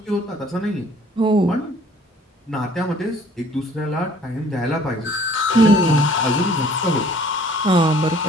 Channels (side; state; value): both; normal; correlation 0.55